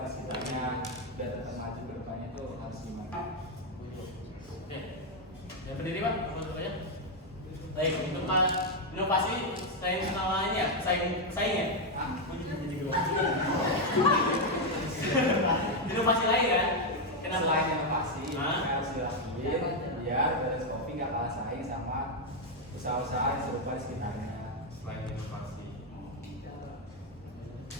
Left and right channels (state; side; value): normal; both; correlation 0.02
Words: di sekitarnya, biar tetap maju ke depannya tuh harus gimana? Oke. Yang berdiri, Pak, masuk aja. Baik, untuk inovasi saing lainnya, saing ya? Inovasi lain kan? Kenapa? Selain inovasi, Hah? harus dilakuin biar Venus Coffee nggak kalah saing sama usaha-usaha yang serupa di sekitarnya. Selain inovasi.